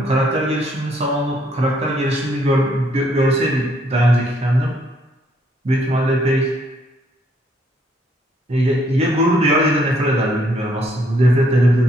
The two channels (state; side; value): normal; both; correlation 0.69